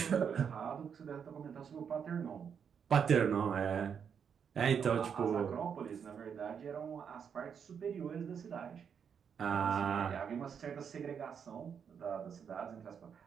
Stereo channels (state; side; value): quieter; left; 7.2 dB